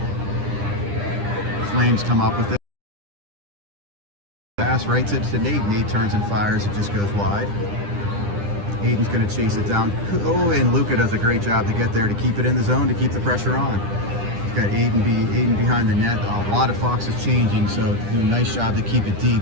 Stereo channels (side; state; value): left; late; 9.9 ms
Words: Flames come up with it. Pass right to Nate. Nate turns and fires. It just goes wide. Aiden's going to chase it down. Oh, and Luca does a great job to get there to keep it in the zone, to keep the pressure on. We've got Aiden behind the net. A lot of Foxes changing, so do a nice job to keep it deep